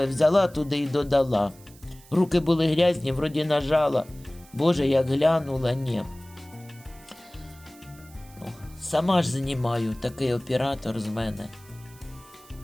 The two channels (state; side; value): noise; right; hiss, 24 dB below the sound